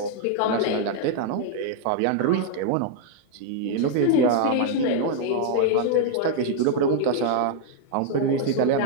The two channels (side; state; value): both; different; correlation 0.00